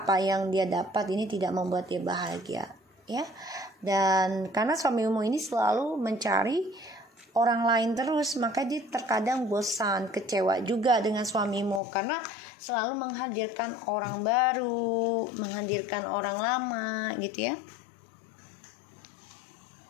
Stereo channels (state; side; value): drops out; right; at 11.8 s